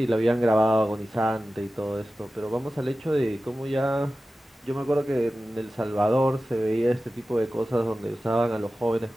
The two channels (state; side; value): normal; both; correlation 0.95